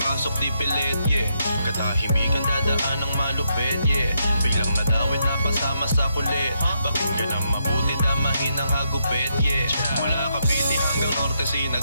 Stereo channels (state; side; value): inverted; both; correlation -0.80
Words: pasok di pilit, yeah. Katahimikan dadaan ng malupit, yeah. Biglang nadawit na pasama sa kulit. Pakinggan ang mabuti, damahin ang hagupit, yeah. Mula Cavite hanggang Norte